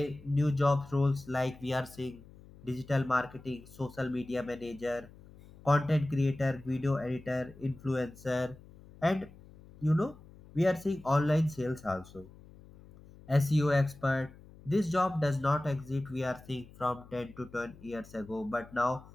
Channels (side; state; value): left; noise; hum, 21 dB below the sound